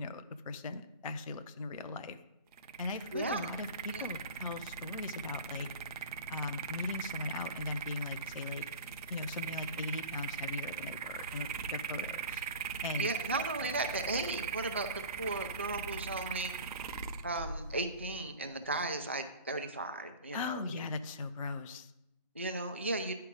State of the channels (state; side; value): inverted; both; correlation -0.35